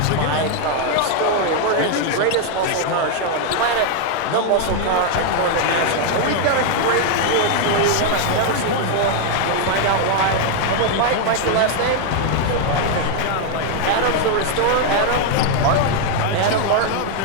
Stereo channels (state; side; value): different; both; correlation 0.00